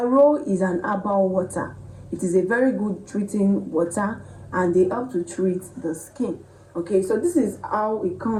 is an herbal water. It is a very good treating water, and they help to treat the skin. Okay, so this is how it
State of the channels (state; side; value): identical; both; correlation 1.00